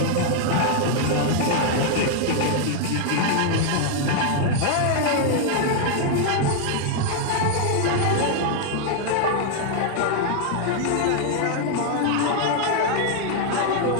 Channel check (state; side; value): different; both; correlation 0.00